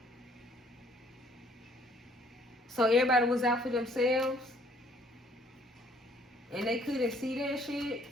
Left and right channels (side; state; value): both; normal; correlation 0.61